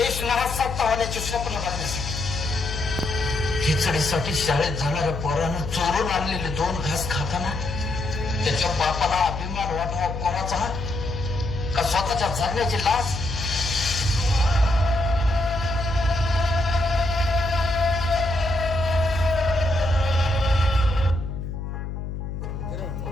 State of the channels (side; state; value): left; noise; hum, 6 dB below the sound